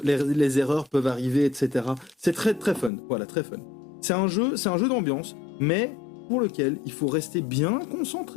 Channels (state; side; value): drops out; right; at 2.9 s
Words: peuvent arriver, etc. C'est très très fun, voilà, très fun. C'est un jeu d'ambiance, mais pour lequel il faut rester bien